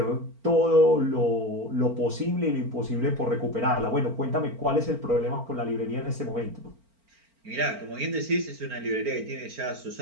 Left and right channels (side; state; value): left; late; 4.4 ms